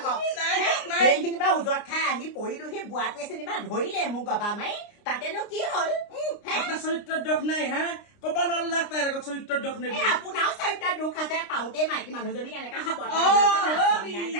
সেইখিনি পৰা উজত খাই আহি পৰিলো সেই বুঢ়াটোৱে যেনিবা ধৰিলে মোক গবা মাৰি তাতেনো কি হ'ল আপোনাৰ চৰিত্ৰৰ দোষ নাই হা কবা নল্লাক তাইৰ আগত চৰিত্ৰৰ দোষ নাই আপোনাৰো চৰিত্ৰ দুখ আছে পাওঁতে মাইকী মানুহজনীক এনেকা সাবত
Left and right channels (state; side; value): late; right; 29 ms